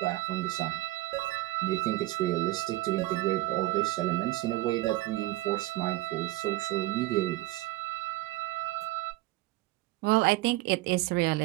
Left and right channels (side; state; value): left; quieter; 18.6 dB